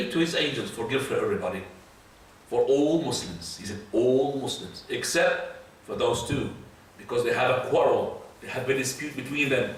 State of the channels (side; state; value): both; identical; correlation 1.00